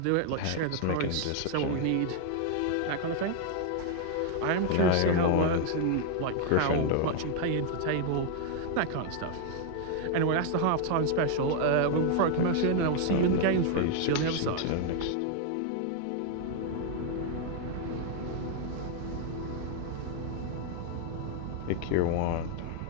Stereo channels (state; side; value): different; both; correlation 0.00